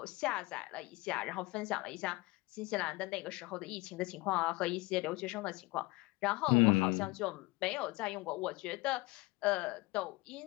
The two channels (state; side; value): quieter; right; 22.4 dB